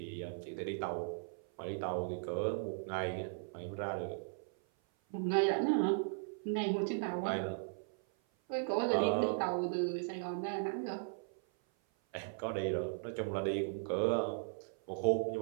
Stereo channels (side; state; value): left; silent; 53 dB below the other